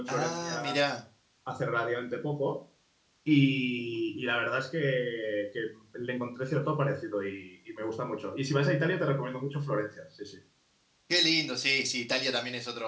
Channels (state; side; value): identical; both; correlation 1.00